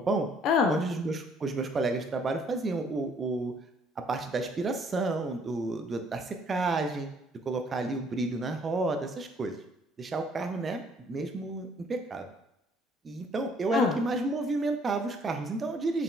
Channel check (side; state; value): both; normal; correlation 0.62